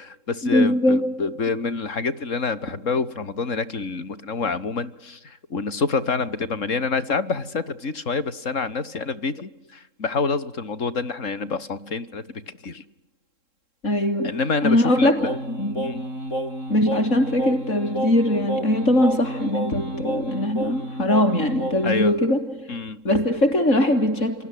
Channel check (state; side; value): late; right; 3.7 ms